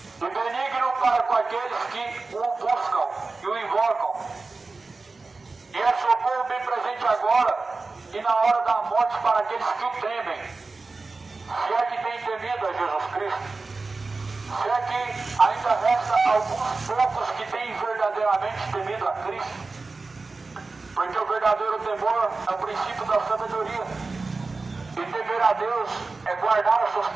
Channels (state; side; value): quieter; left; 3.8 dB